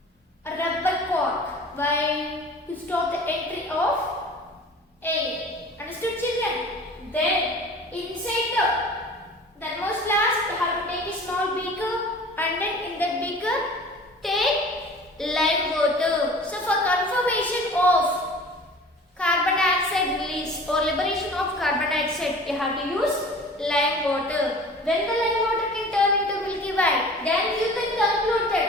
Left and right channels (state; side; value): normal; both; correlation 0.43